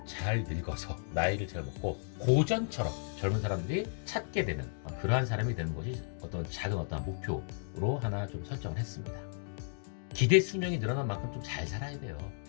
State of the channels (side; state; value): right; silent; digital silence